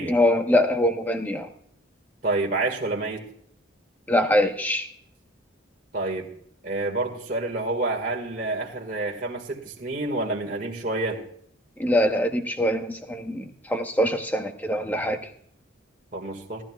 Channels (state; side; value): normal; both; correlation 0.50